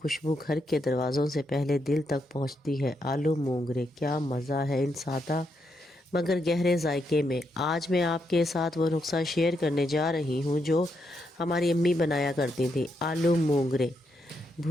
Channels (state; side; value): normal; both; correlation 0.80